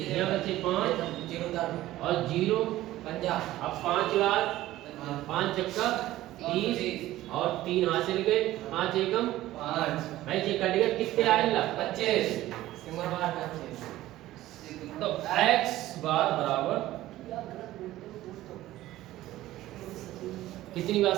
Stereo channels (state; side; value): quieter; left; 15.4 dB